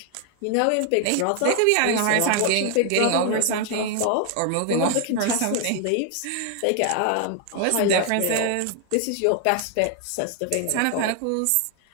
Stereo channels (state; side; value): different; both; correlation 0.00